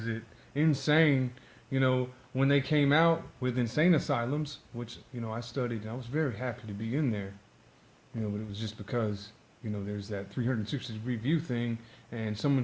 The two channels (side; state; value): both; identical; correlation 1.00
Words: it insane, you know, when they came out with insane asylums, which, you know, I studied and I was very happy to be in there, you know, but it was just because, you know, there's that 360-degree view thing, and